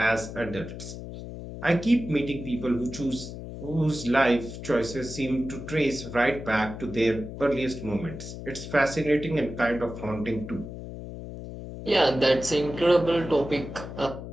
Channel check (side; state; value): left; noise; hum, 10 dB below the sound